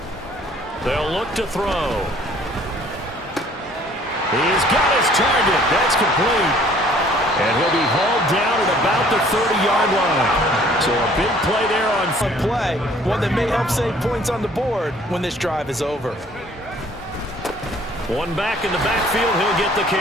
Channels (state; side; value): normal; both; correlation 0.57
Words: They'll look to throw. He's got his target. That's complete. And he'll be hauled down at about the 30-yard line. So a big play there on play, one that may help save points on the board when this drive is over. One back in the backfield. He'll get the